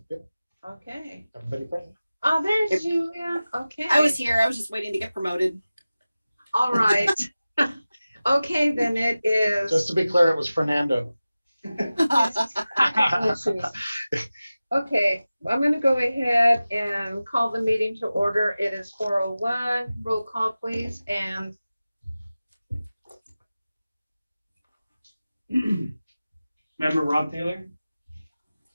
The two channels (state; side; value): inverted; both; correlation -0.96